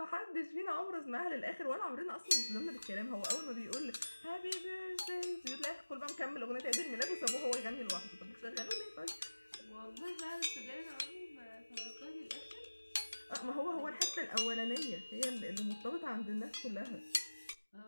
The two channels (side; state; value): both; inverted; correlation -1.00